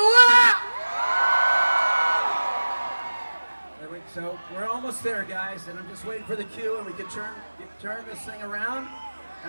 what? So we're almost there, guys, and I'm just waiting for the cue, and we can turn this thing around,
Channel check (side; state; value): both; inverted; correlation -1.00